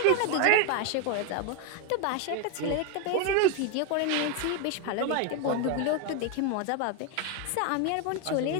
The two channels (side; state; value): both; different; correlation 0.01